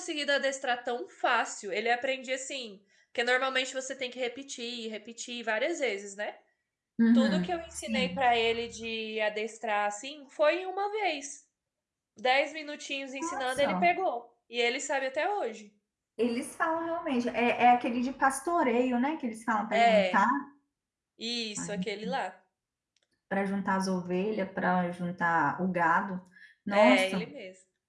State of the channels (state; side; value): identical; both; correlation 1.00